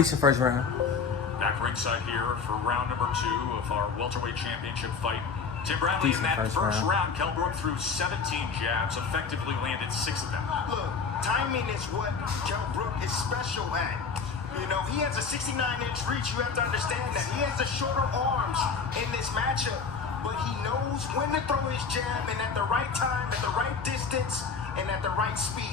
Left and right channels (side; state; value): right; quieter; 5.4 dB